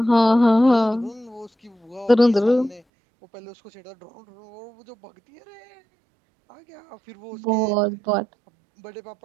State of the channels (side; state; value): left; drops out; at 2.8 s